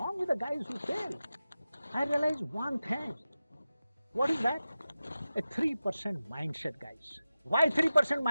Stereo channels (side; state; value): both; inverted; correlation -0.94